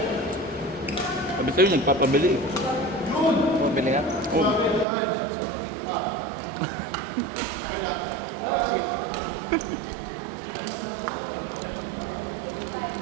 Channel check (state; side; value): drops out; left; at 4.9 s